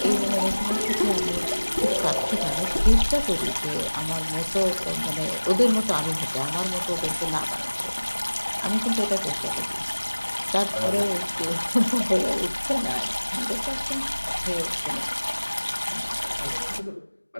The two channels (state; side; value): inverted; both; correlation -1.00